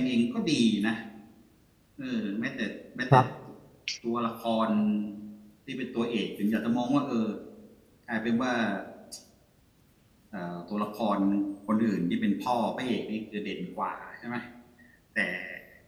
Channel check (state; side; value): identical; both; correlation 1.00